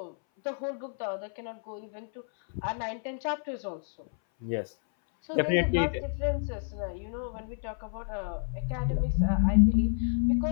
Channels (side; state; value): right; silent; 58 dB below the other